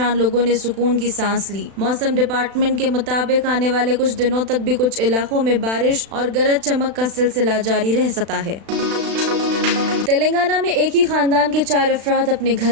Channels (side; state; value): left; late; 36 ms